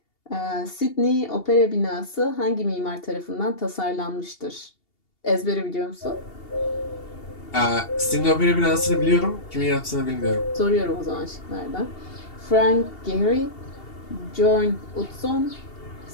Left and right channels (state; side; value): late; right; 2.8 ms